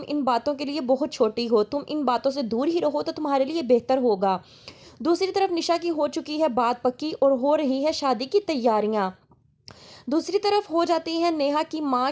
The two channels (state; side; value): identical; both; correlation 1.00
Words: इन बातों के लिए बहुत छोटी हो, तुम इन बातों से दूर ही रहो तो तुम्हारे लिए बेहतर होगा। दूसरी तरफ निशा की हो चुकी है बात पक्की और हो रही है शादी की तैयारियां। दूसरी तरफ हो जाती है नेहा की माँ